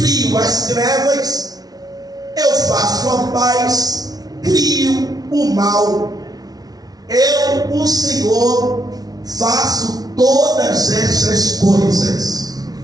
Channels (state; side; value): late; left; 0.19 ms